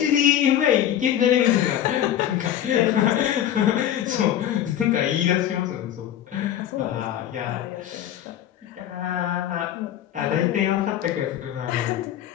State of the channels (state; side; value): quieter; right; 11.1 dB